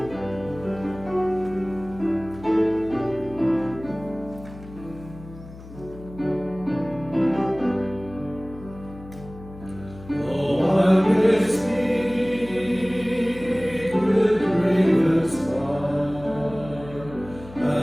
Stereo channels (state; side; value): noise; left; hum, 16 dB below the sound